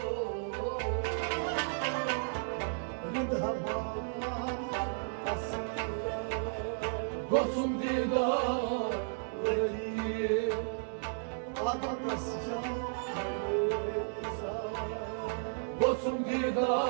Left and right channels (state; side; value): silent; left; 55 dB below the other